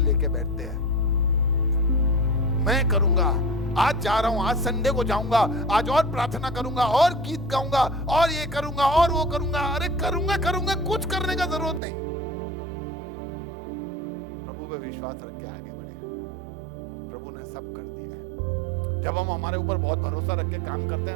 बैठते हैं। मैं करूंगा, आज जा रहा हूं, आज संडे को जाऊंगा, आज और प्रार्थना करूंगा, और गीत गाऊंगा, और ये करूंगा और वो करूंगा। अरे करूंगा, कुछ करने का जरूरत नहीं। प्रभु पे विश्वास रख के आगे बढ़े, प्रभु ने सब कर दिया है। जब हम हमारे ऊपर बहुत भरोसा रख के काम करते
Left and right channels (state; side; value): drops out; left; at 11.8 s